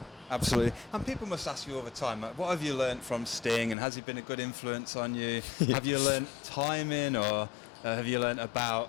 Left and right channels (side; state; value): right; drops out; at 3.8 s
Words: Absolutely. And people must ask you all the time, what have you learned from Sting, and has he been a good influence on you? Have you learned timing, or have you learned